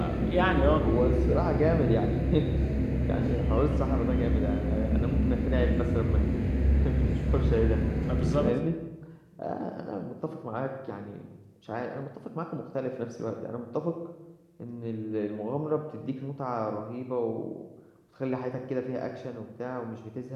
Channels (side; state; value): both; identical; correlation 1.00